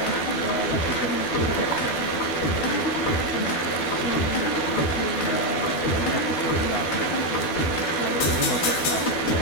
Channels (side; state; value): right; late; 12 ms